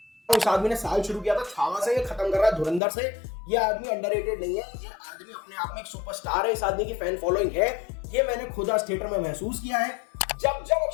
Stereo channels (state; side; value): drops out; right; at 2.8 s